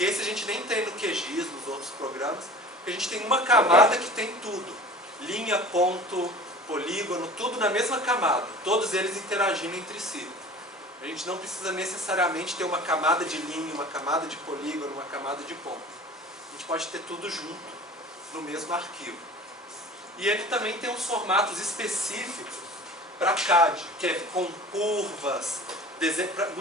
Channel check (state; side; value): normal; both; correlation 0.41